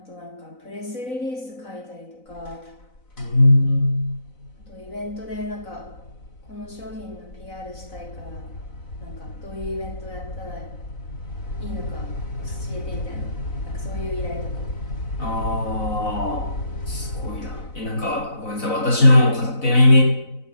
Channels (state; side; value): late; right; 4.0 ms